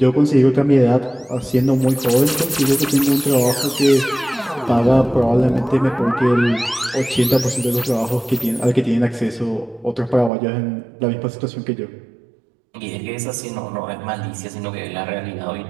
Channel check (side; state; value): left; drops out; at 10.3 s